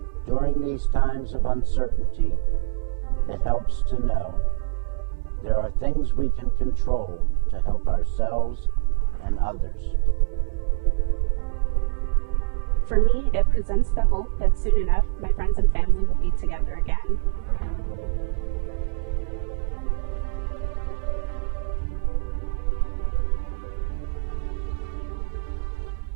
During these times of uncertainty, it helps to know there are things we can control to help ourselves and others. For me, it presents the hope that soon enough my friends and family will be together again.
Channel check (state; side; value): silent; left; digital silence